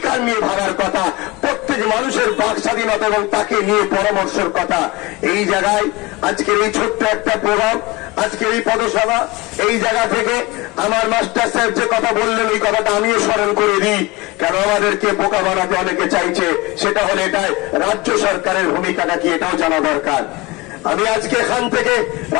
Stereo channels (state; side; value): quieter; right; 22.3 dB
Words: নিয়ে ভাবার কথা, প্রত্যেক মানুষের বাক স্বাধীনতা এবং তাকে নিয়ে পরামর্শের কথা। এই জায়গায় আজকের এই ছোট্ট একটা প্রোগ্রাম, আজকের এই পদসভা, এই জায়গা থেকে আমার মাস্টার সাহেব যে কথা বললেন ওই কথাটা আমিও স্মরণ করে দিই। কেন আমাদেরকে বোকা বানাতে অনেকে চাইছে, সেটা হলে এটাই রাজ্য সরকারের ভূমিকাটা কি এটাও জানা দরকার। আমি আজকে এখান থেকে